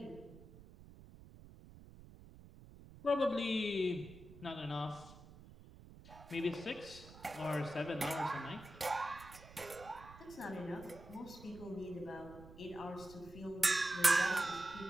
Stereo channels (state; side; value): noise; right; rumble, 18 dB below the sound